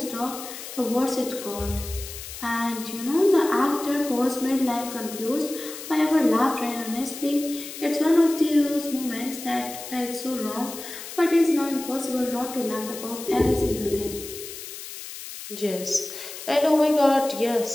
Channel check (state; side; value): noise; left; hiss, 11 dB below the sound